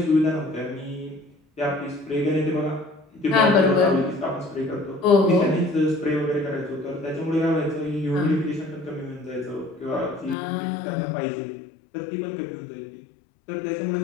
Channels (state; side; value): drops out; right; at 10.4 s